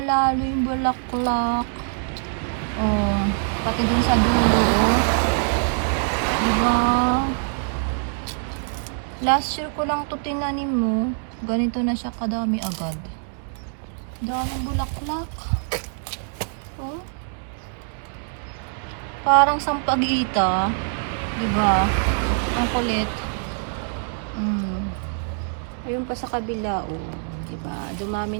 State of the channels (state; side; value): silent; left; 61 dB below the other